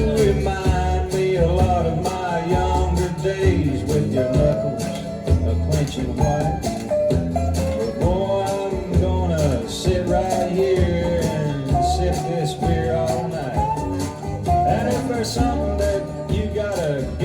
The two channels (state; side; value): identical; both; correlation 1.00